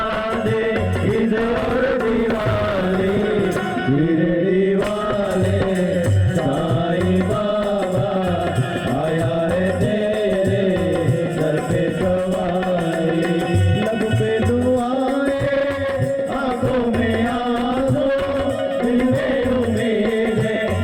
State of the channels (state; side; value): identical; both; correlation 1.00